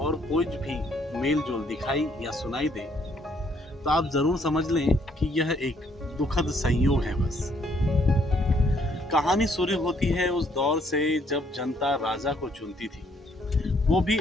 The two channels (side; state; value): both; normal; correlation 0.68